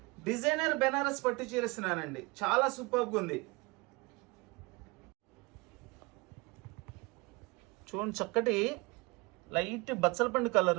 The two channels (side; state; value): left; quieter; 25.4 dB